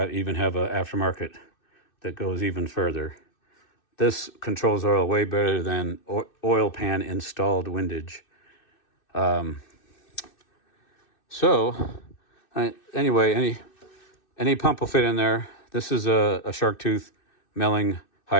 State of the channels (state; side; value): late; right; 2.6 ms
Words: have an aftermarket that goes even further. This controls oil way better than oil pan installed windage. Anyway, any pump will fit in there. This is a shark tooth milling